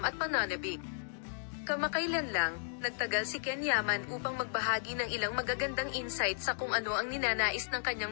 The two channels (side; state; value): right; silent; digital silence